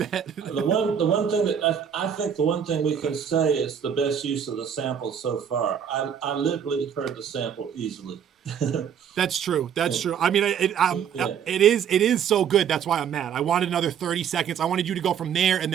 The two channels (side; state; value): left; quieter; 8.2 dB